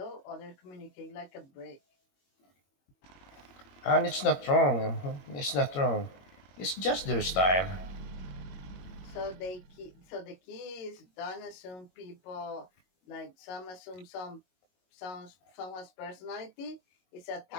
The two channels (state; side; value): late; right; 21 ms